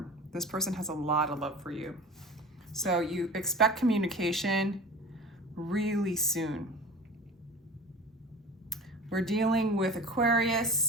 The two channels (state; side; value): normal; both; correlation 0.36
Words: This person has a lot of love for you. So you expect communication really soon. We're dealing with